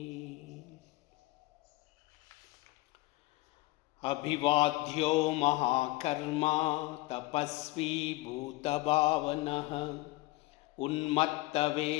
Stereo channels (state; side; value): quieter; right; 20.4 dB